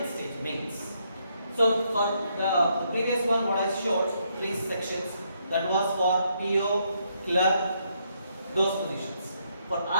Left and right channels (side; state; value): both; inverted; correlation -0.75